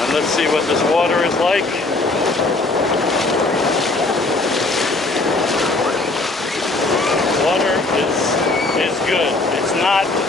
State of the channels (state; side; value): quieter; right; 3.2 dB